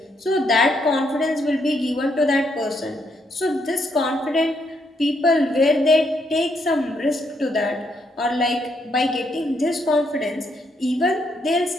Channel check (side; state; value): both; normal; correlation 0.75